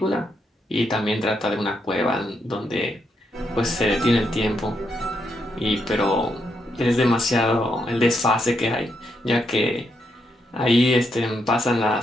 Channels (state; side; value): normal; both; correlation 0.79